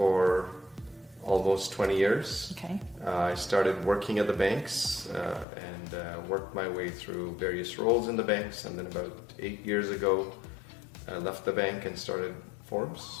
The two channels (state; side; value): drops out; right; at 5.5 s